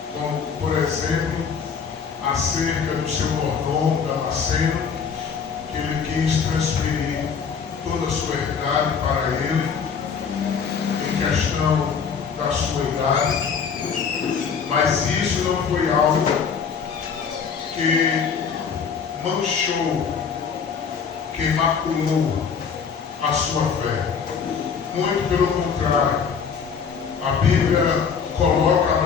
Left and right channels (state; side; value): quieter; right; 6.3 dB